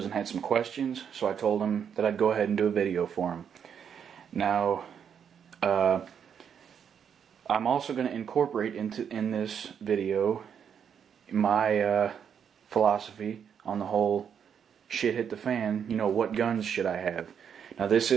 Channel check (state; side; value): quieter; left; 7.8 dB